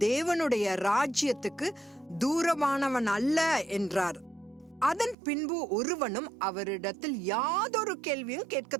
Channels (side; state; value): left; drops out; at 5.2 s